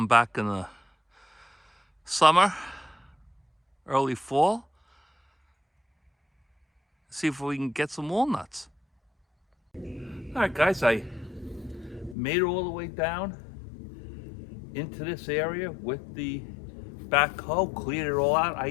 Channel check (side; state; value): right; drops out; at 12.2 s